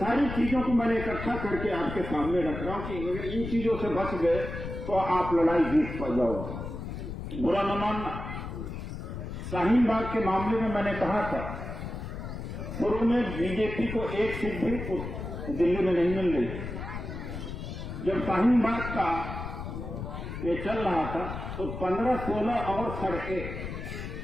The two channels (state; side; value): noise; left; rumble, 7 dB below the sound